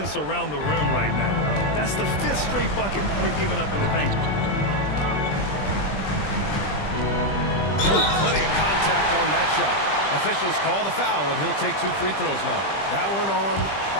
around the rim right now. That's the 5th straight bucket they've given up in the paint. Plenty of contact on that shot. Officials call the foul, and he'll take 2 free throws now. That one on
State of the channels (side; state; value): right; late; 20 ms